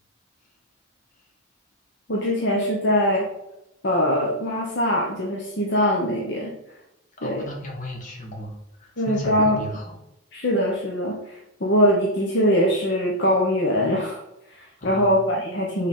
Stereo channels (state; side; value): normal; both; correlation -0.06